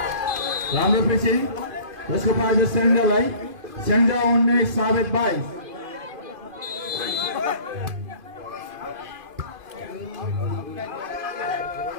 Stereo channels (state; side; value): late; left; 2.5 ms